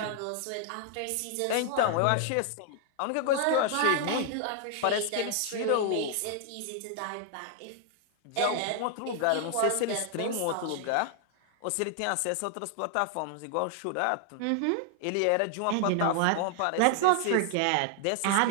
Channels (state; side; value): different; both; correlation 0.00